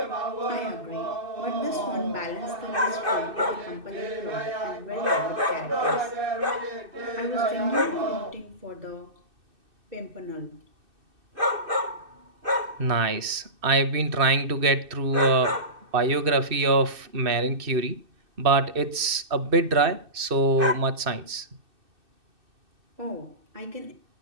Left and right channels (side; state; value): left; late; 2.6 ms